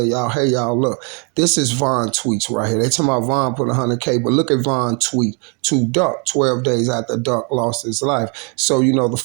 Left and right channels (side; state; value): left; quieter; 36.0 dB